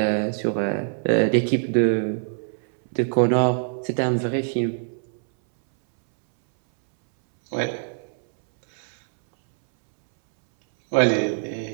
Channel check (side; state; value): left; silent; 63 dB below the other